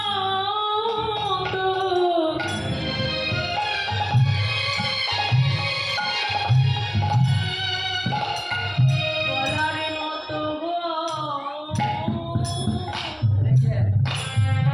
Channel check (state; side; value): identical; both; correlation 1.00